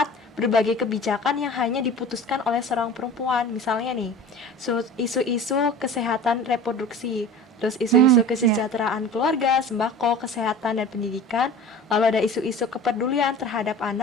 berbagai kebijakan yang hanya diputuskan oleh seorang perempuan. Misalnya nih, isu-isu kesehatan reproduksi, terus isu-isu kesejahteraan keluarga, sembako, kesehatan dan pendidikan, lalu ada isu-isu kepedulian terhadap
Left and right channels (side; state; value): both; normal; correlation 0.38